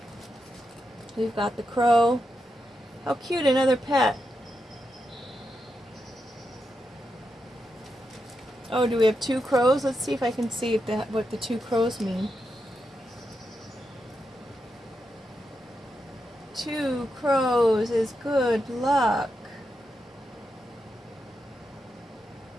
We've got the crow. How cute, another pet. Oh, do we have two crows? Let's see if I can see what the two crows mean. Two crows is good luck.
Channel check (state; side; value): normal; both; correlation 0.86